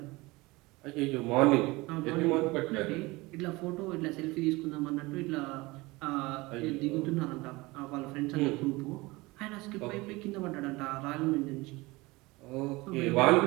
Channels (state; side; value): quieter; left; 22.3 dB